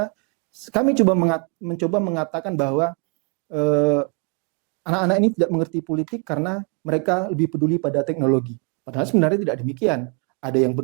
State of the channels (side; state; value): left; quieter; 35.7 dB